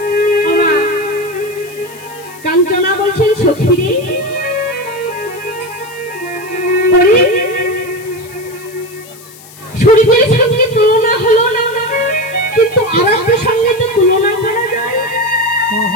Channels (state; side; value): noise; left; hiss, 21 dB below the sound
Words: ওমা, কাঞ্চনা বলছেন সখীরে, ওরে সূর্যের সঙ্গে তুলনা হলো না, কিন্তু আরেকটার সঙ্গে তো তুলনা করা যায়।